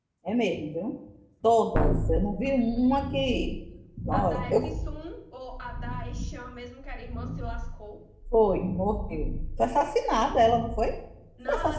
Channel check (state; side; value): identical; both; correlation 1.00